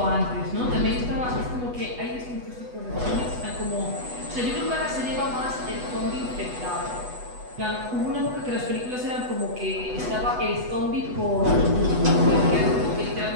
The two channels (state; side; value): late; left; 8.1 ms